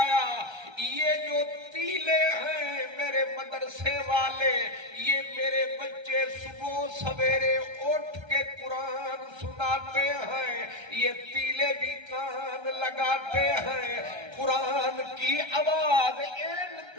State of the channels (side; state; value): left; late; 1.3 ms